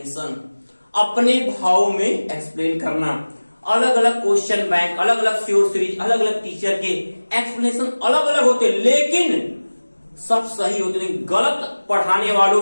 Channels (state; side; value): inverted; both; correlation -1.00